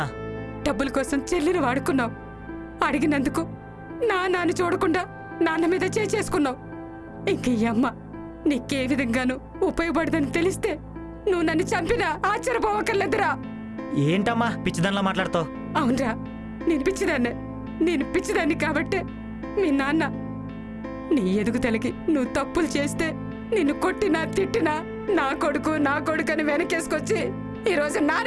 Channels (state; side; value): identical; both; correlation 1.00